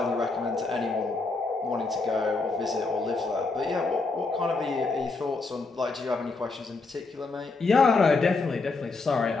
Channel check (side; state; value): right; quieter; 3.8 dB